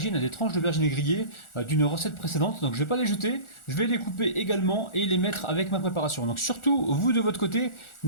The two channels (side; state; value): right; late; 1.4 ms